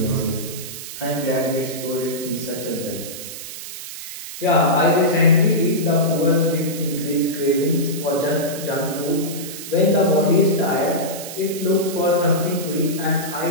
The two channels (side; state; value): right; noise; hiss, 10 dB below the sound